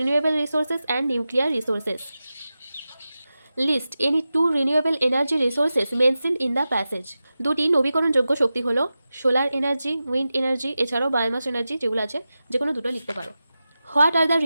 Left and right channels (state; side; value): inverted; both; correlation -0.93